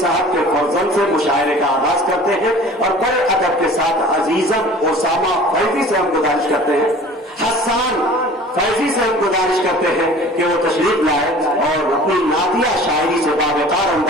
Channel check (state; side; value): normal; both; correlation 0.44